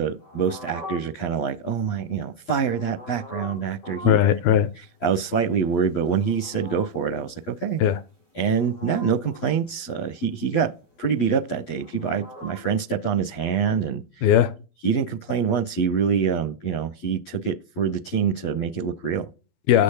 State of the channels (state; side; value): late; right; 11 ms